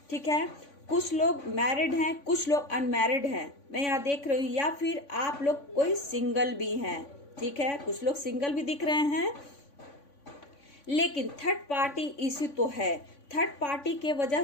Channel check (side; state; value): right; late; 3.5 ms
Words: ठीक है, कुछ लोग मैरिड हैं, कुछ लोग अनमैरिड हैं, मैं यहाँ देख रही हूँ, या फिर आप लोग कोई सिंगल भी हैं। ठीक है, कुछ लोग सिंगल भी दिख रहे हैं, लेकिन थर्ड पार्टी इशू तो है। थर्ड पार्टी के वजह